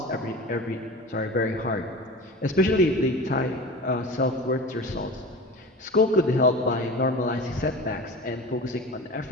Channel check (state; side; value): normal; both; correlation 0.34